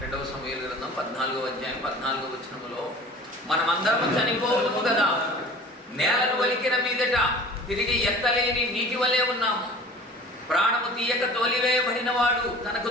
2వ సమూయేలు గ్రంథం 14వ అధ్యాయం 14వ వచనంలో, మనమందరము చనిపోవుము కదా, నేలను వలికిన మీదట తిరిగి ఎత్తలేని నీటి వలె ఉన్నాము, ప్రాణము తీయక తోలివేయబడిన వాడు తనకు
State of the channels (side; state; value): both; normal; correlation 0.43